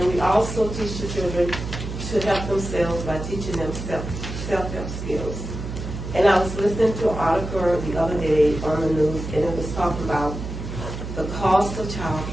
we also teach the children to help themselves by teaching them self-help skills. And I was listening to an article the other day on the news, and it was talking about the cost of child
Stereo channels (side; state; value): right; noise; hum, 7 dB below the sound